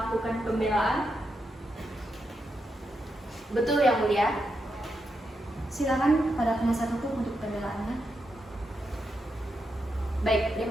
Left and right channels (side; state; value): both; normal; correlation 0.84